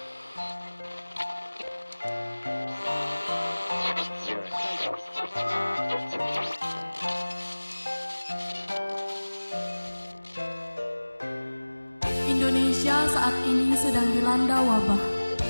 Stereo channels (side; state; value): both; inverted; correlation -1.00